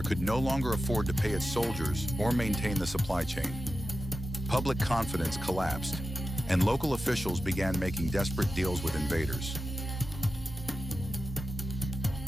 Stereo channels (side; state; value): both; normal; correlation 0.92